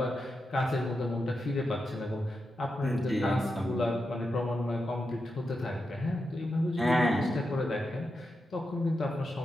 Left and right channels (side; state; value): both; normal; correlation 0.88